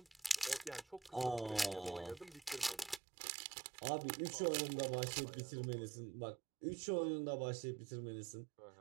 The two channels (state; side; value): drops out; left; at 3.0 s